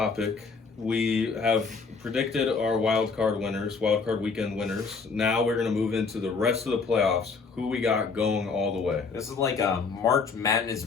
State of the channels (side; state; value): right; quieter; 4.9 dB